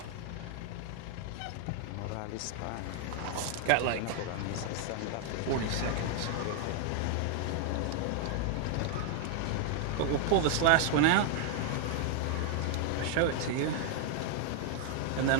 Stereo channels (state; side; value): different; both; correlation 0.00